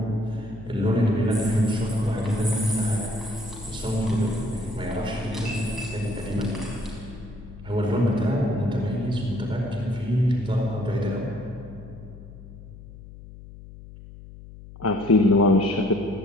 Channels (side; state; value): left; noise; hum, 16 dB below the sound